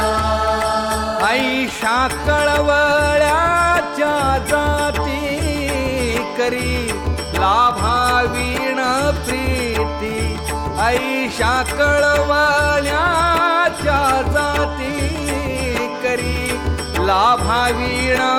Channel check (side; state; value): both; identical; correlation 1.00